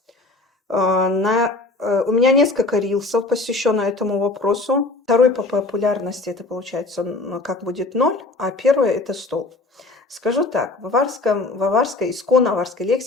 У меня несколько рилсов посвящено этому вопросу. Второй по популярности это получается как будет 0, а первое это стол. Скажу так, в аварской, исконно аварской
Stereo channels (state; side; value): quieter; right; 3.2 dB